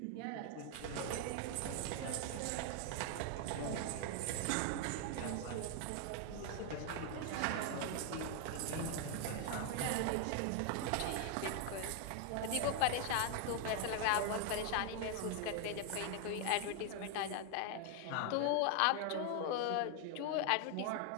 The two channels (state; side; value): different; both; correlation 0.00